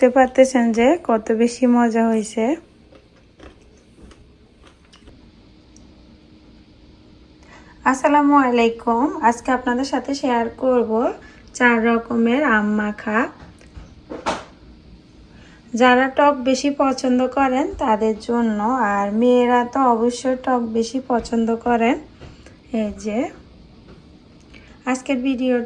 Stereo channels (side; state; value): both; identical; correlation 1.00